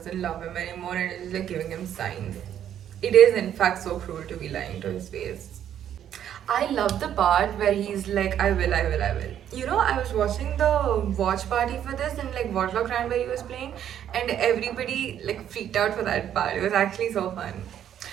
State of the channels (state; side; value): quieter; left; 10.1 dB